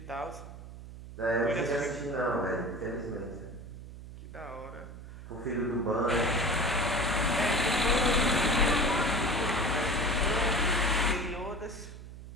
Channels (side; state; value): right; noise; hum, 14 dB below the sound